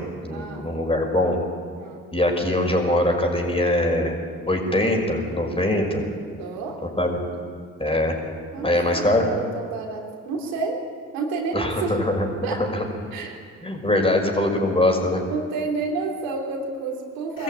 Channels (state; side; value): normal; both; correlation 0.43